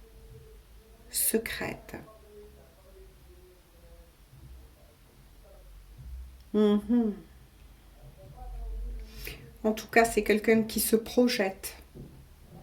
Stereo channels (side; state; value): both; identical; correlation 1.00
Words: Secrète. En tout cas, c'est quelqu'un qui se projette